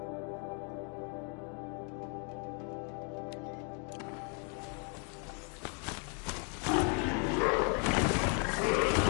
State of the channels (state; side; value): quieter; right; 38.7 dB